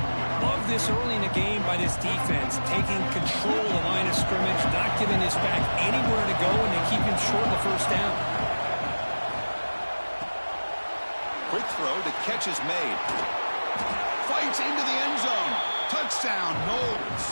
Love this early in the game by this defense. Taking control of the line of scrimmage. Not giving this back anywhere to go, and they keep him short of the 1st down. Quick throw, the catch is made. Fights into the end zone. Touchdown, Knowles.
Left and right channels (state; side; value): inverted; both; correlation -1.00